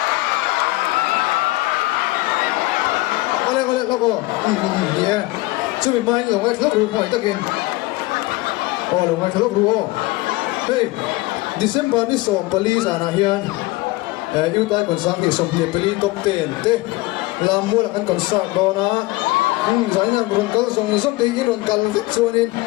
Oleh nó cô. Yeah. Chưa mình mai rồi ngay lớp rùa hỏi tất nhiên. Rồi ngay lớp rùa. Hey. December ni som police ana hian yêu tai còn sang thì som le peli top 10 te làm mua là ăn còn sạc đó na giải ngân buồn câu dòng dốc đi cái buồn cần vắt chuồn in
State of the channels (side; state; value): right; quieter; 20.7 dB